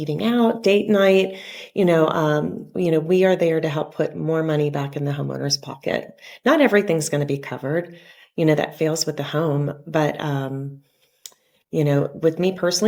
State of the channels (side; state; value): both; identical; correlation 1.00